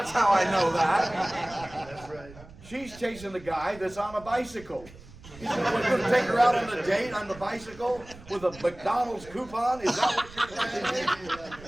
how I know that. That's right. She's chasing the guy that's on a bicycle. He's going to take her out on a date on the bicycle with a McDonald's coupon? Is that what you're saying?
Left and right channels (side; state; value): right; noise; rumble, 20 dB below the sound